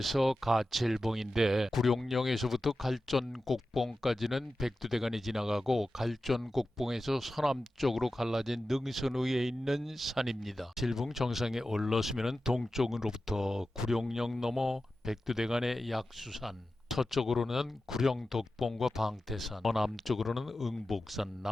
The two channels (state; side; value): normal; both; correlation 0.93